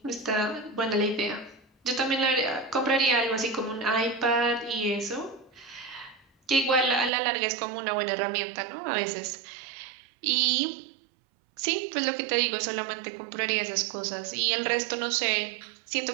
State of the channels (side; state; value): left; drops out; at 7.1 s